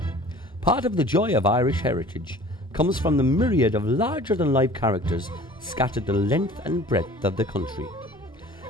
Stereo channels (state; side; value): normal; both; correlation 0.47